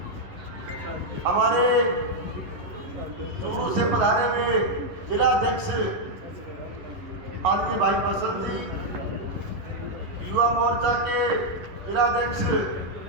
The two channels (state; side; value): late; left; 11 ms